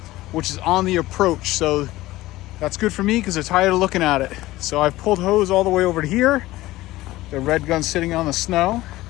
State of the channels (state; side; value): quieter; right; 17.4 dB